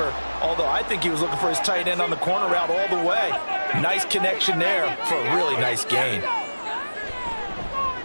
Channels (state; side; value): inverted; both; correlation -1.00